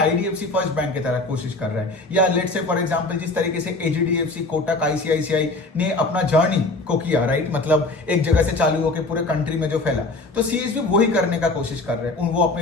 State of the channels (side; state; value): right; quieter; 3.2 dB